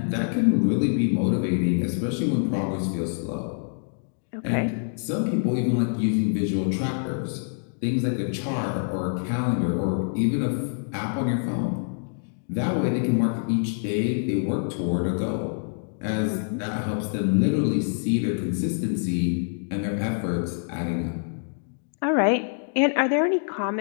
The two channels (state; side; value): silent; right; digital silence